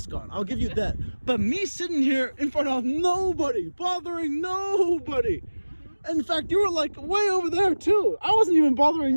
on. I'll give you that. But me sitting here in front of nobody, bothering nobody. In fact, you were like way over there too. I wasn't even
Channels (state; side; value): inverted; both; correlation -1.00